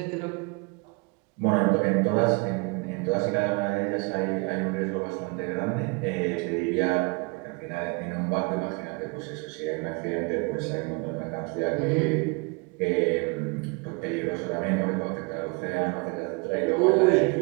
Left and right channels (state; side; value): quieter; left; 30.2 dB